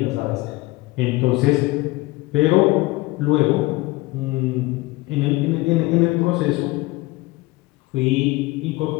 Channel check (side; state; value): right; quieter; 21.0 dB